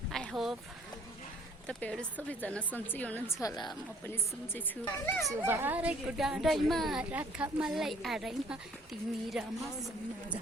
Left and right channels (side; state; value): both; normal; correlation 0.59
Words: I hope तपाईँहरू सबैजना सन्चै हुनुहुन्छ होला। म पनि सन्चै छु। चुबारेको डाँडैमा राख मलाई आडैमा तिमी र मसँग